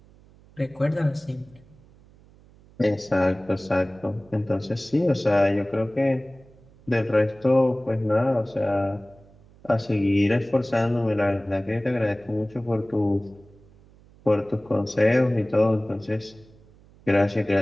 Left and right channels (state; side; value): noise; right; hum, 26 dB below the sound